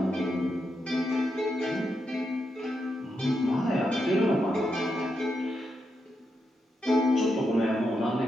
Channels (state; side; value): normal; both; correlation 0.84